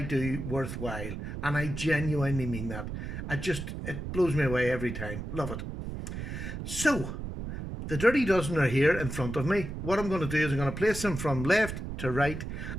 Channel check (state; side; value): noise; right; rumble, 6 dB below the sound